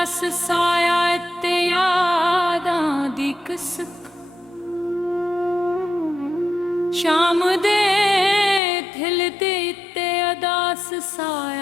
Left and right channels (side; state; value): right; drops out; at 8.6 s